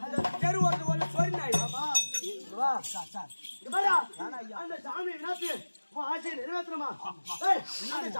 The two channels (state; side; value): inverted; both; correlation -1.00